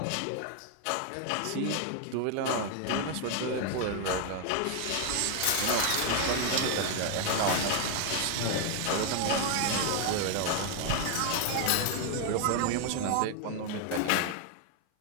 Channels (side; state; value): both; different; correlation 0.00